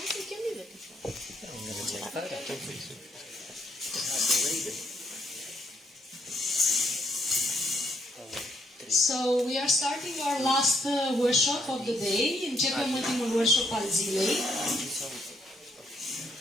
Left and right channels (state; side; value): normal; both; correlation 0.73